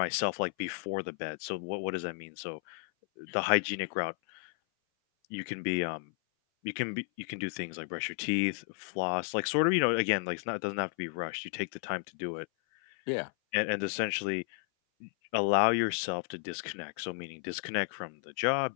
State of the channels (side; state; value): right; silent; 56 dB below the other